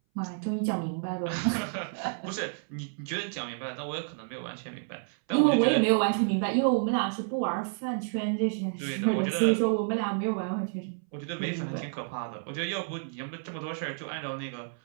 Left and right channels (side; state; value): left; silent; 58 dB below the other